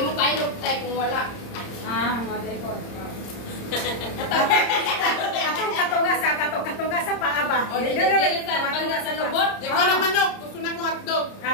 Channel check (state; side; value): late; right; 30 ms